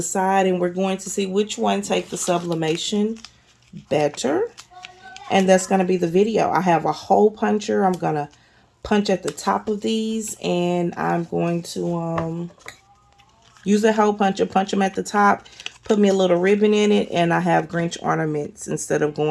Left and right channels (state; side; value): identical; both; correlation 1.00